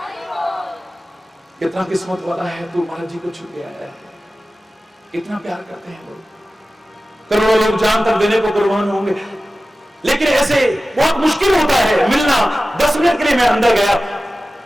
कितना किस्मत वाला है तू, महाराज जी को छू के आया है। इतना प्यार करते हैं लोग, करोड़ों लोग जान तक देने को कुर्बान होंगे। लेकिन ऐसे बहुत मुश्किल होता है मिलना। 10 मिनट के लिए मैं अंदर गया,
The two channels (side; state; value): both; normal; correlation 0.95